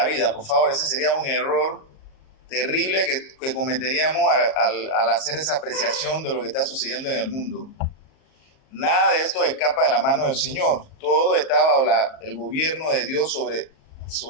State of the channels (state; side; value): late; right; 38 ms